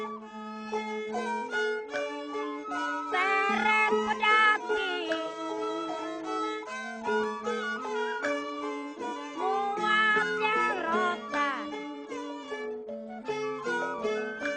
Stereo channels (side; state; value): both; identical; correlation 1.00